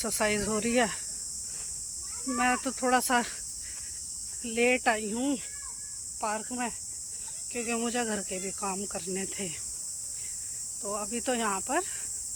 हो रही है। मैं तो थोड़ा सा लेट आई हूँ पार्क में, क्योंकि मुझे घर के भी काम करने थे। तो अभी तो यहाँ पर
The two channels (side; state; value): both; identical; correlation 1.00